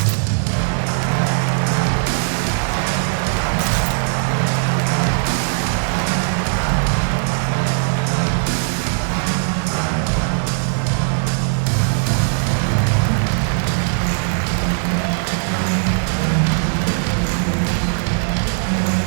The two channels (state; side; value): silent; left; digital silence